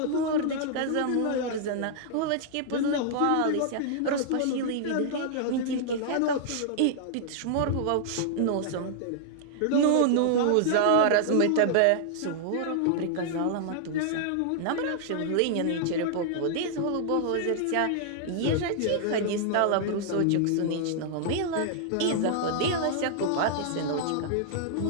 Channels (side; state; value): both; different; correlation -0.01